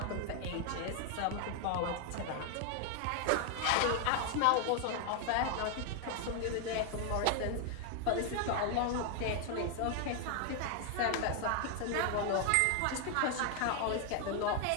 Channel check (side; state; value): both; different; correlation 0.00